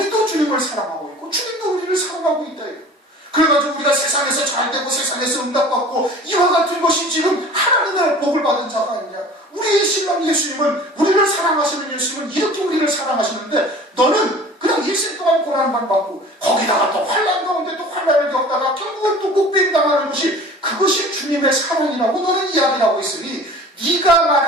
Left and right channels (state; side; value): normal; both; correlation 0.44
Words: 주님을 사랑하고 있고 주님도 우리를 사랑하고 있다. 그래가지고 우리가 세상에서 잘되고 세상에서 응답받고 이와 같은 것이 지금 하나님의 복을 받은 자가 아니냐. 우리의 신랑 예수님은 우리를 사랑하시는 예수님은 이렇게 우리를 사랑하시는데 너는 그냥 일생 동안 고난만 받고 거기다가 또 환난 가운데 또 환난을 겪다가 결국은 또 목배임 당하는 것이 그것이 주님의 사랑이라고 너는 이야기를 하고 있으니 네가